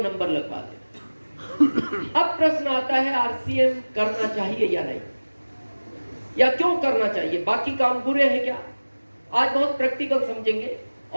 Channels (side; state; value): both; inverted; correlation -1.00